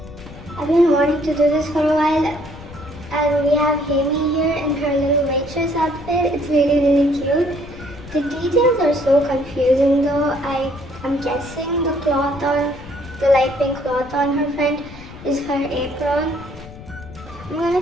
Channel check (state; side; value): noise; left; rumble, 16 dB below the sound